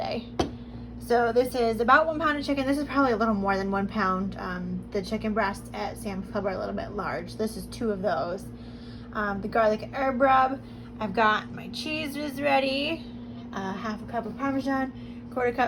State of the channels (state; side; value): identical; both; correlation 1.00